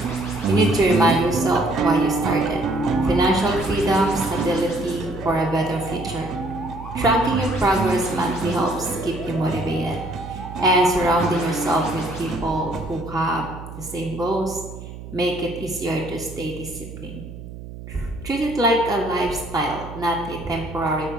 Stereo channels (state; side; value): noise; right; hum, 13 dB below the sound